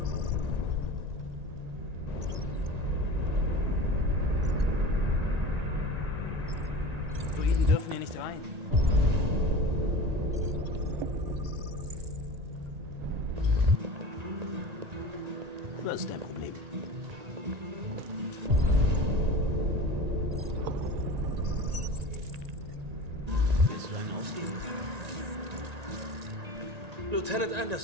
Druiden dürfen hier nicht rein. Was ist dein Problem? Willst du einen ausgeben? Lieutenant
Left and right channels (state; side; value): late; left; 1.9 ms